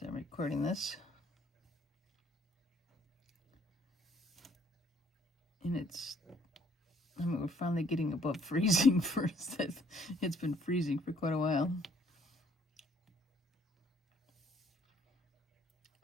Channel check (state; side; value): normal; both; correlation 0.63